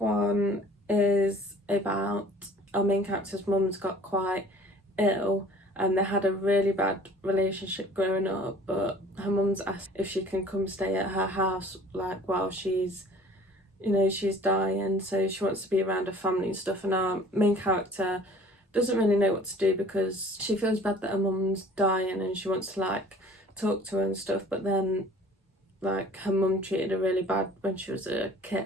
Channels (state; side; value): normal; both; correlation 0.50